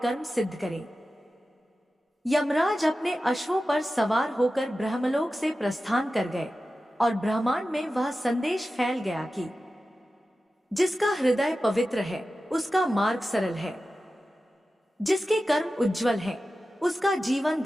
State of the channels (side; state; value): both; normal; correlation 0.94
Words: कर्म सिद्ध करे। यमराज अपने अश्वों पर सवार होकर ब्रह्मलोक से प्रस्थान कर गए और ब्रह्मांड में वह संदेश फैल गया कि जिसका हृदय पवित्र है उसका मार्ग सरल है, जिसके कर्म उज्जवल हैं उसका जीवन